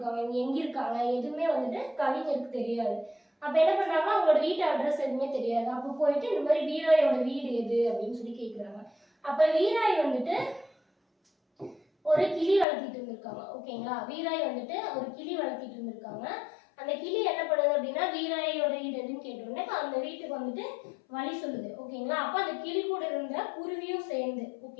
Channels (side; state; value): right; drops out; at 12.7 s